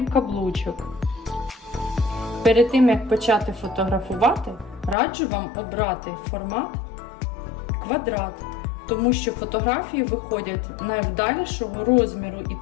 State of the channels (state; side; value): drops out; right; at 5.0 s